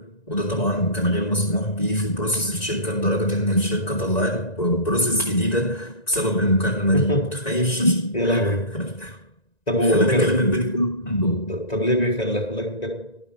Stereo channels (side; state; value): right; late; 1.9 ms